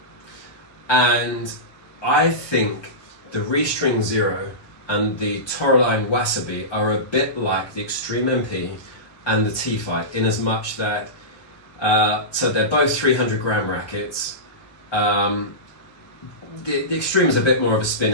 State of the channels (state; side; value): late; right; 1.2 ms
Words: And I think the Restring Zero and the Toroline Wasabi are a bit like the Extreme MP and the T-Fight, in as much that, so they're both 300 gram rackets. The Extreme is a bit more of a spin